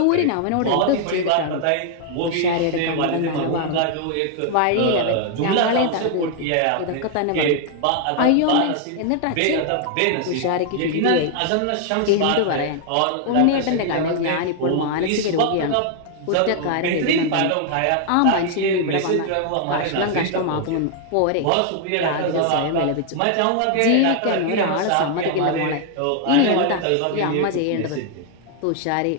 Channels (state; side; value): different; both; correlation 0.00